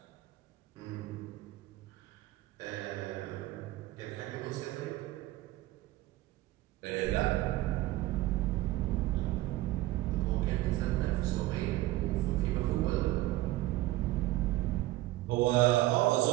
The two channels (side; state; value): left; quieter; 17.2 dB